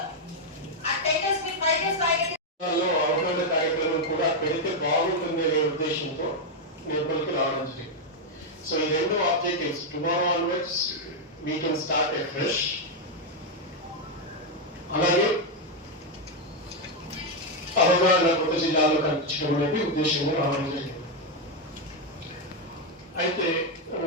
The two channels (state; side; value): normal; both; correlation 0.02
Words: ఆ 10 days మీ 5 days రాయగలిగితే అవగాహన కార్యక్రమం కూడా పెడితే బాగుంటుంది అనే ఉద్దేశంతో నిర్మల్కి రావడం జరిగింది. So in the end of objectives, tomorrow onwards we can start afresh. అలాగే అవగాహన కొత్త జిల్లాలో కనిపించడం అనేది ఉద్దేశంగా రావడం జరిగింది. అయితే